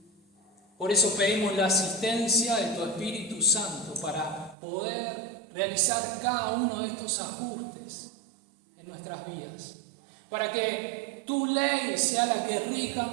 Por eso pedimos la asistencia de tu Espíritu Santo para poder realizar cada uno de estos ajustes en nuestras vidas. Para que tu ley sea la que rija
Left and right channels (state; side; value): drops out; left; at 4.5 s